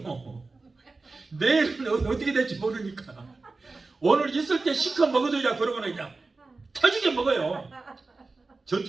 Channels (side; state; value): left; quieter; 3.7 dB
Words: 내일은 어떻게 될지 모르니까 오늘 있을 때 시커 먹어두자 그러고는 그냥 터지게 먹어요.